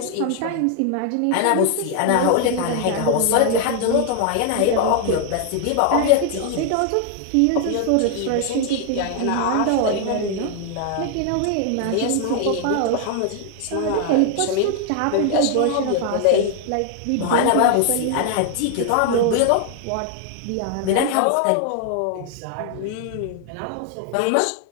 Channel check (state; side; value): different; both; correlation 0.00